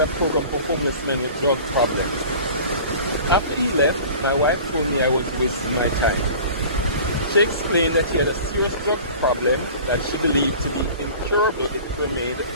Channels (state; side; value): inverted; both; correlation -0.42